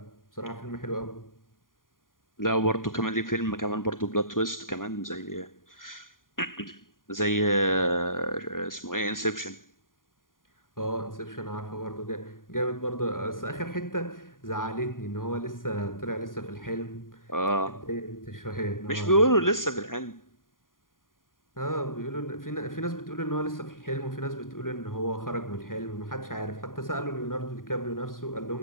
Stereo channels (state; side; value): late; right; 0.90 ms